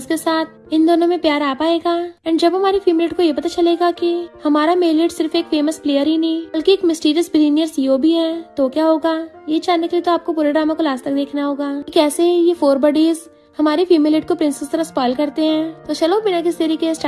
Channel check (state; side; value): identical; both; correlation 1.00